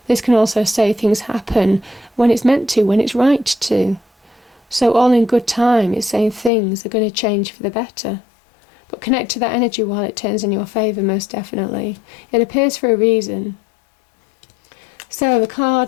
This can also say things happen when it's meant to, when it's right to. So all in good time, it's saying things are going to change for the better. But connect to that energy while it turns in your favour, most definitely. It appears for a reason. So the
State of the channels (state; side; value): drops out; right; at 6.5 s